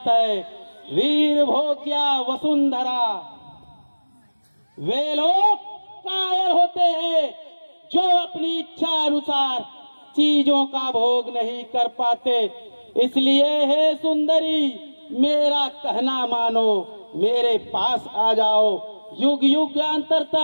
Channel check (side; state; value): both; inverted; correlation -1.00